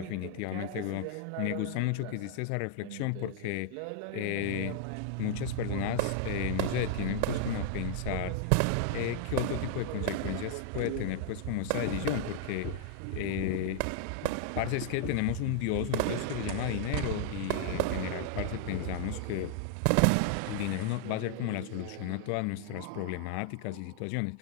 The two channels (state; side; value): different; both; correlation 0.00